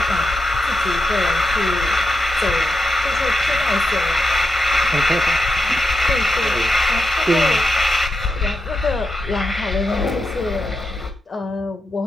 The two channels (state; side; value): normal; both; correlation 0.86